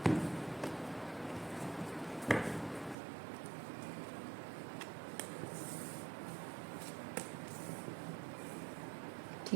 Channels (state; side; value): drops out; left; at 3.0 s